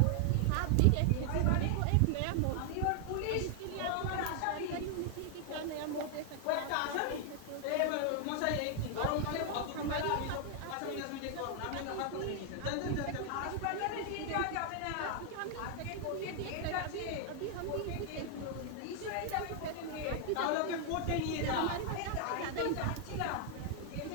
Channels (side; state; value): both; different; correlation 0.00